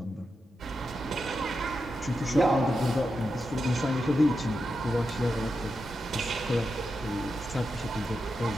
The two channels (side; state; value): both; normal; correlation 0.88